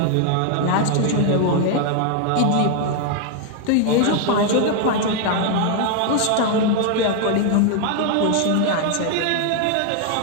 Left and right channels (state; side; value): different; both; correlation 0.00